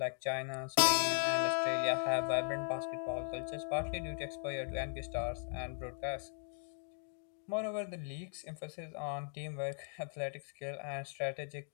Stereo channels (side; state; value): right; silent; 52 dB below the other